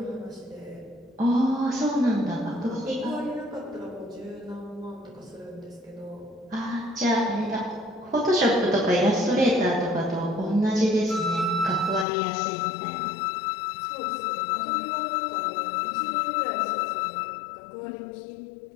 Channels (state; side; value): drops out; right; at 12.1 s